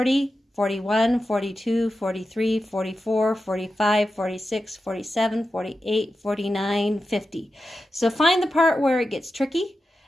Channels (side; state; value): both; normal; correlation 0.91